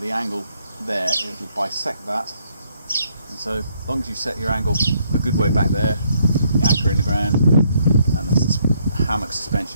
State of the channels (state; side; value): inverted; both; correlation -0.70